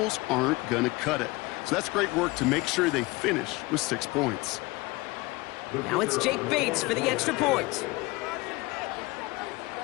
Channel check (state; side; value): quieter; right; 22.6 dB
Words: aren't going to cut it. So that's great work to make sure they finish with 6 points. Now it's Jake Bates for the extra point.